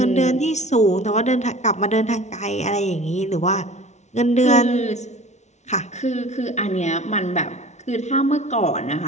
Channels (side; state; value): right; late; 0.33 ms